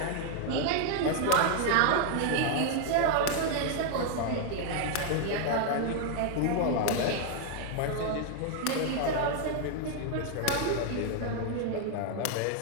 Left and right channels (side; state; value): both; different; correlation 0.00